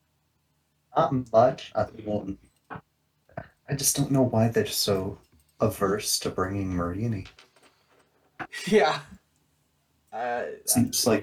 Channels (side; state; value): both; identical; correlation 1.00